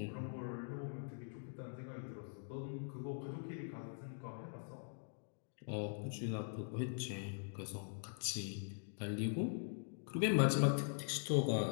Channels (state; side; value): silent; right; digital silence